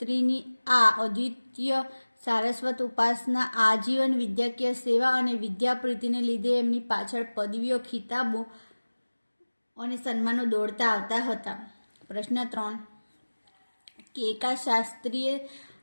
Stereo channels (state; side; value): inverted; both; correlation -1.00